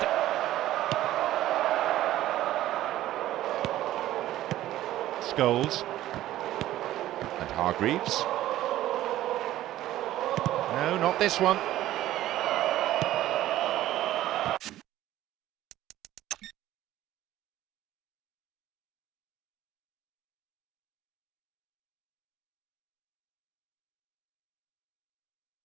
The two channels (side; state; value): left; quieter; 14.2 dB